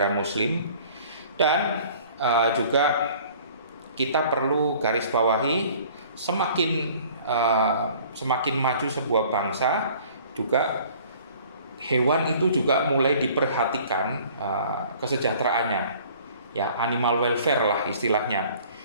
Muslim. Dan juga kita perlu garis bawahi, semakin maju sebuah bangsa, juga hewan itu juga mulai diperhatikan kesejahteraannya, ya, animal welfare lah istilahnya.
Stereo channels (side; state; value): both; inverted; correlation -0.51